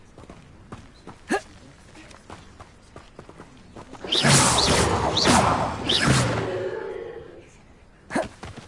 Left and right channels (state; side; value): identical; both; correlation 1.00